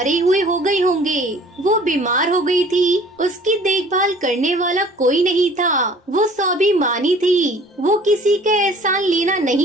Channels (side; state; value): both; normal; correlation 0.51